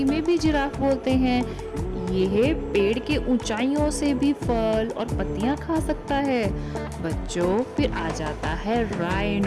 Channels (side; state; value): both; identical; correlation 1.00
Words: में भी जिराफ बोलते हैं। यह पेड़ के ऊंचाइयों से भी फल और पत्तियां खा सकता है। बच्चों, फिर आ जाता है